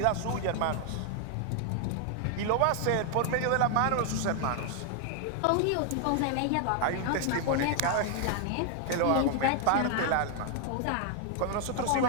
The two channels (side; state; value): both; different; correlation 0.00